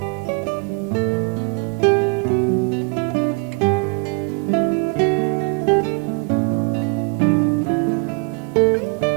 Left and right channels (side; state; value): left; quieter; 34.3 dB